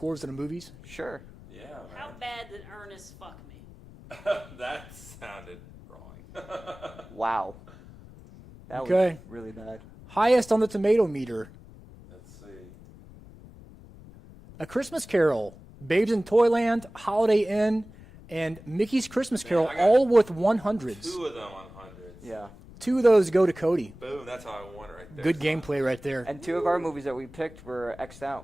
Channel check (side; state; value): left; noise; rumble, 19 dB below the sound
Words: in the movies? Sure. Yeah, How man. bad did Ernest fuck me? That sounded wrong. Wow. That Okay. was really bad. Highest on the tomato meter. Let's see. A Christmas Carol, Babes in Toyland, Holiday Inn, and Mickey's Christmas Carol, I got all with 100s. Two of them on hundreds. Yeah. 2 of those go to Cody. Boom. That's how I won it right there. Good gameplay right there. And 2 of our movies that we picked were X'd